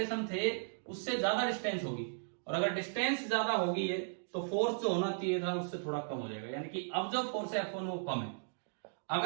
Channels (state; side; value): silent; left; digital silence